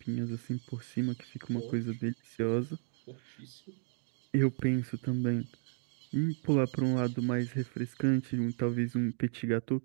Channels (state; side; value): silent; left; 55 dB below the other